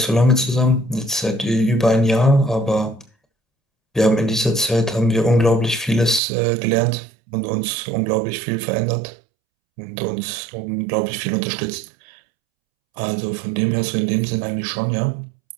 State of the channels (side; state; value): left; drops out; at 6.2 s